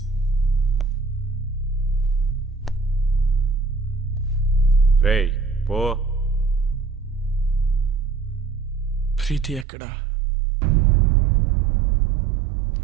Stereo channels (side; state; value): left; drops out; at 9.7 s